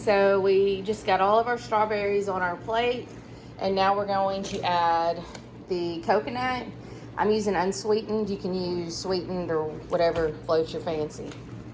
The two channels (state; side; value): identical; both; correlation 1.00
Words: we just got all of our strawberries on our plate, and now we're going to add the coconut. I'm using unsweetened. You can use sweetened or whatever floats your fancy.